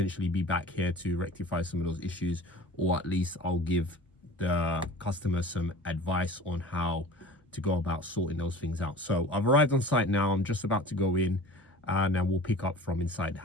be back here to rectify some of those issues, or at least I'll give the customer some advice on how to go about sorting those things out. So I've arrived on site now. I'm just about to go in, and then we'll pick up from inside the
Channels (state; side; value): normal; both; correlation 0.41